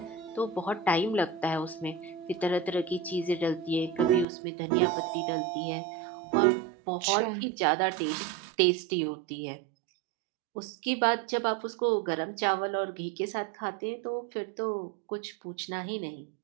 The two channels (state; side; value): drops out; left; at 4.2 s